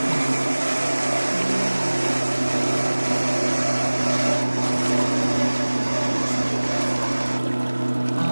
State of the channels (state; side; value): inverted; both; correlation -1.00